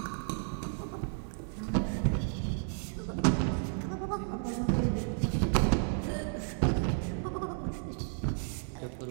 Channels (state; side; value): silent; left; 56 dB below the other